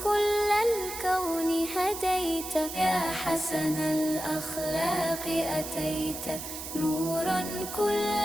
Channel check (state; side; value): noise; right; hiss, 8 dB below the sound